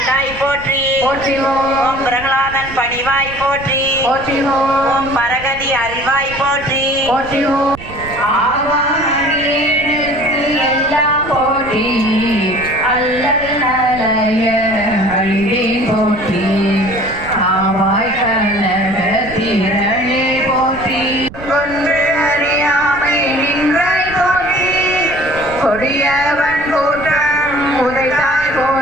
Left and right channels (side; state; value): right; noise; rumble, 15 dB below the sound